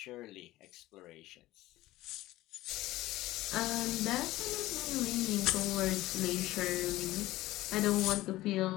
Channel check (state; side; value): quieter; right; 17.0 dB